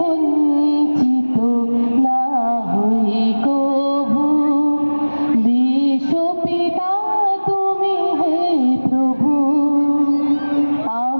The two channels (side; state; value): both; inverted; correlation -1.00